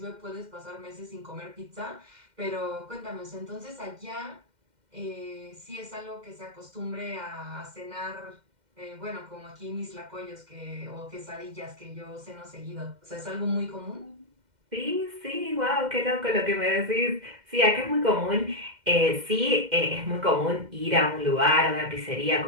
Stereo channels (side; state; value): left; late; 2.1 ms